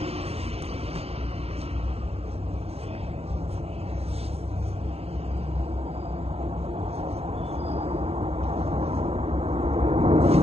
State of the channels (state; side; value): late; left; 0.29 ms